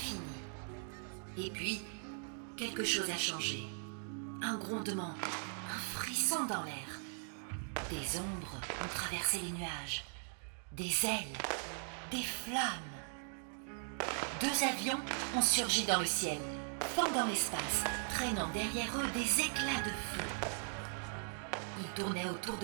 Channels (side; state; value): left; silent; 52 dB below the other